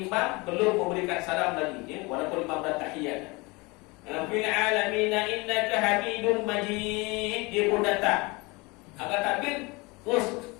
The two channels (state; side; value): quieter; right; 25.5 dB